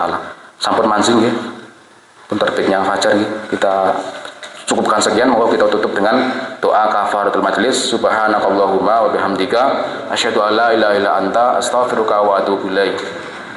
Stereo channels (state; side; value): identical; both; correlation 1.00